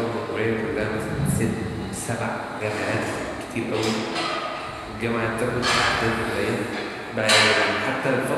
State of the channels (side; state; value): both; identical; correlation 1.00